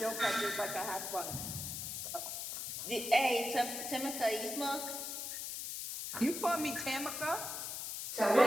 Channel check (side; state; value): left; noise; hiss, 5 dB below the sound